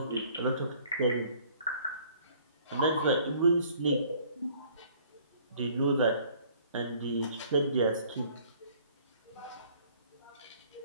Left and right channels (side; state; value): both; inverted; correlation -0.56